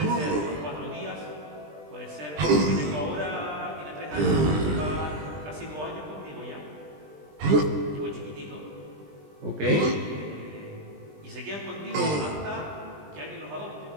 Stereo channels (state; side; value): late; left; 20 ms